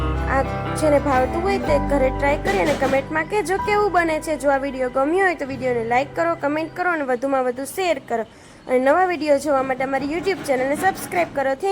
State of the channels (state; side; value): identical; both; correlation 1.00